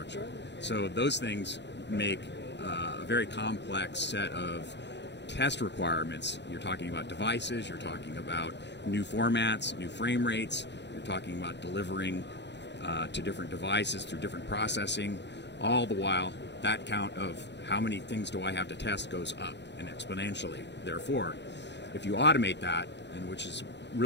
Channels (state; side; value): late; right; 0.51 ms